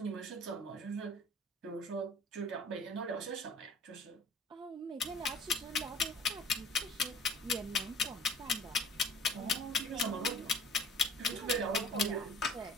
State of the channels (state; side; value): normal; both; correlation 0.48